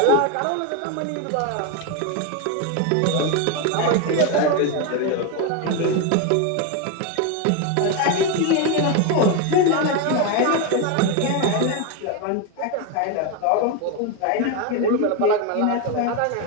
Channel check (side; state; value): both; different; correlation 0.02